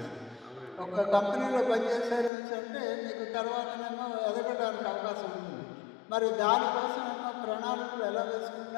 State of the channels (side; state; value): right; drops out; at 2.3 s